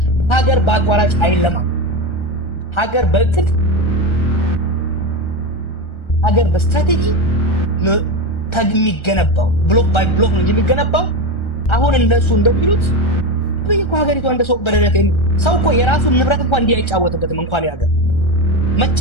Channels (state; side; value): late; right; 1.3 ms